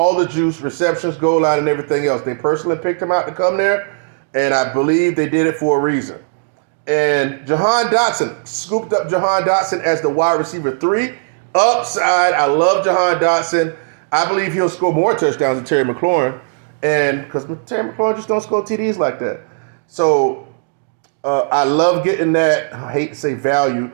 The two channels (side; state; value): left; silent; digital silence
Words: the juice, receptions, goal line, and everything else. They personally picked him out to come there, and I believe they did it for a reason. And Jahan Dotson, scooped up Jahan Dotson as the wide receiver 3. Upside, I love Jahan Dotson. I believe he'll score more touchdowns than Terry McLaurin, and because Terry McLaurin just don't score TDs like that. So I love getting that, I hate to say value,